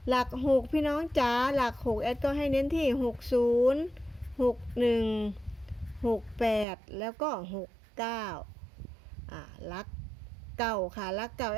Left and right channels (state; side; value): drops out; left; at 6.7 s